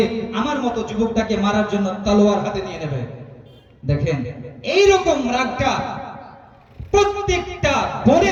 আমার মতো যুবকটাকে মারার জন্য তলোয়ার হাতে নিয়ে নেবে। দেখেন, এইরকম রাগটা প্রত্যেকটা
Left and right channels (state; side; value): identical; both; correlation 1.00